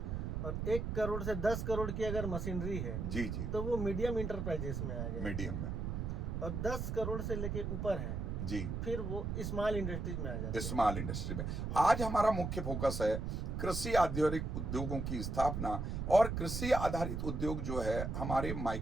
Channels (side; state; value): right; noise; rumble, 2 dB below the sound